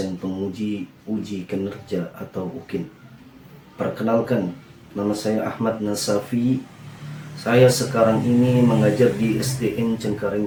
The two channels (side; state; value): both; identical; correlation 1.00